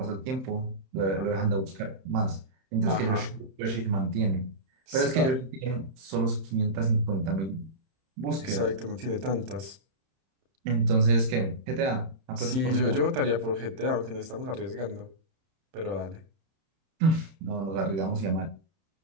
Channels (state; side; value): late; left; 31 ms